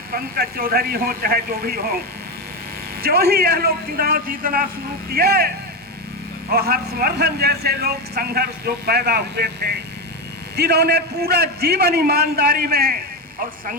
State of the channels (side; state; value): both; normal; correlation 0.14